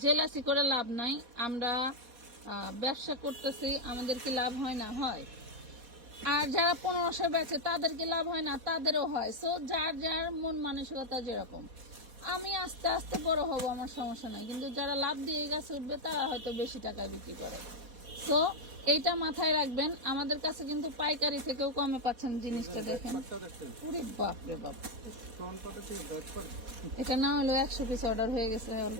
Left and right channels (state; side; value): late; left; 4.2 ms